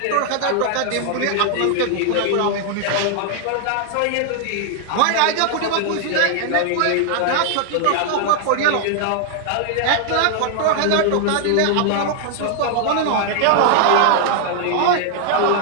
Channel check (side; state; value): both; different; correlation 0.00